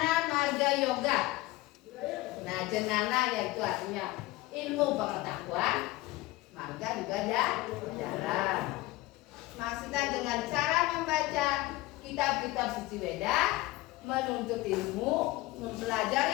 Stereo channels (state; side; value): quieter; right; 19.0 dB